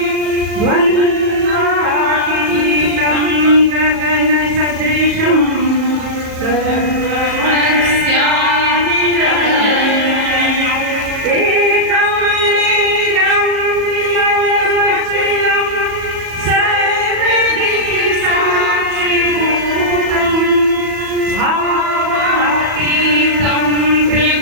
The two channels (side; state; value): left; late; 37 ms